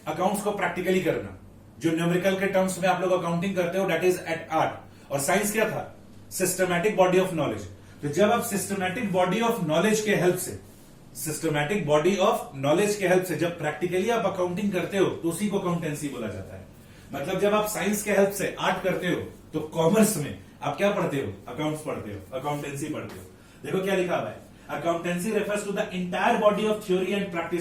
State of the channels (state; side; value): identical; both; correlation 1.00